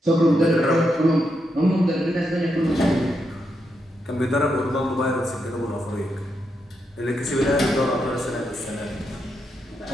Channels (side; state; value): both; normal; correlation 0.83